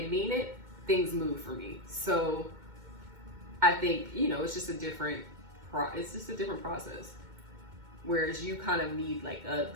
and mean it, things move for me. So I think, you know, it's just a different process. Whereas you kind of need like a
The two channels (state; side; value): late; left; 2.2 ms